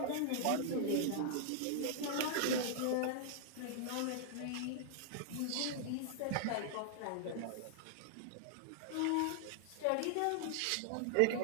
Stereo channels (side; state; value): both; different; correlation -0.01